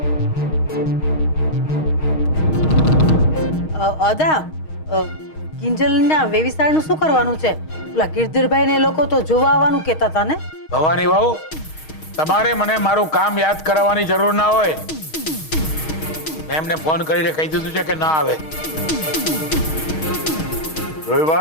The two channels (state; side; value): late; right; 6.4 ms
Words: અદા, કિંજલના વેવિસાળનું શું કરવાનું છે? ઓલા ગિરધરભાઈ ને લોકો તો જોવા આવવાનું કહેતા હતા ને? ભવાની વહુ, તમારે મને મારું કામ યાદ કરાવવાની જરૂર ના હોય. મેં એમને ફોન કરીને કહી દીધું છે કે ના આવે. જોઈ